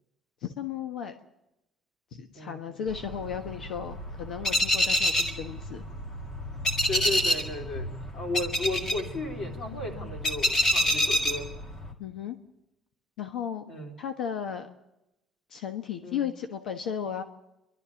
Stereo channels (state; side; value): normal; both; correlation 0.59